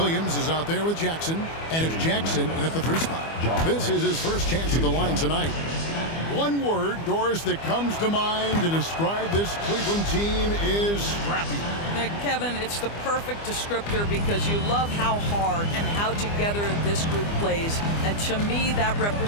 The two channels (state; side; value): late; right; 25 ms